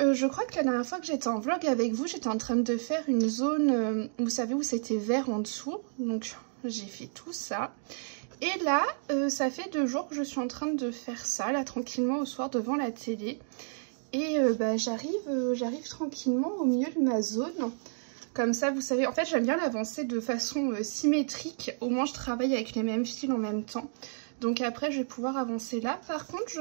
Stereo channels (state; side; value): silent; left; digital silence